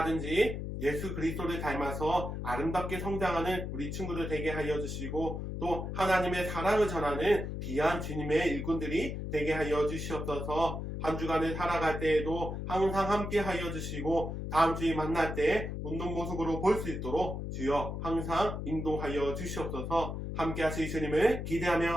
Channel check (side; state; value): left; noise; hum, 5 dB below the sound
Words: 예수 그리스도를 닮아서 아름답게 성장하는 우리 친구들 되게 하여 주시고 또 하나님의 사랑을 전하는 귀한 주님의 일꾼들이 되게 하여 주시옵소서. 한 주간을 살아갈 때에도 항상 함께 하여 주시고 다음 주에 만날 때 웃는 모습으로 볼 수 있도록 주여 항상 인도하여 주시옵소서. 함께 하실 주님을